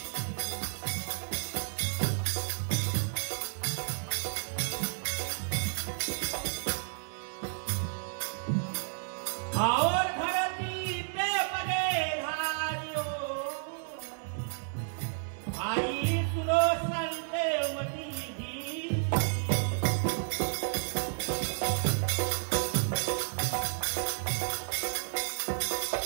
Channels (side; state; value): left; silent; 57 dB below the other